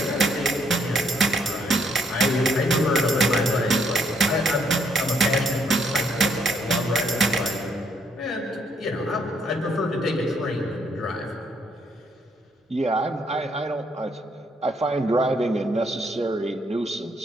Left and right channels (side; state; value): both; normal; correlation 0.71